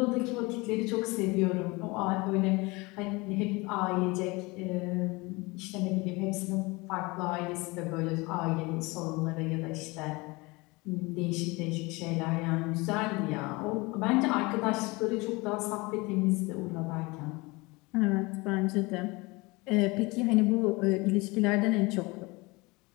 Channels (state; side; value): quieter; right; 24.6 dB